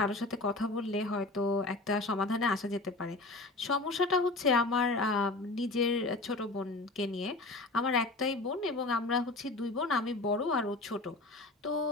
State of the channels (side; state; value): right; quieter; 3.1 dB